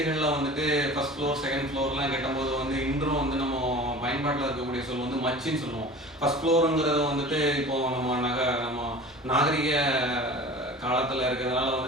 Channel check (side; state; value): both; normal; correlation 0.39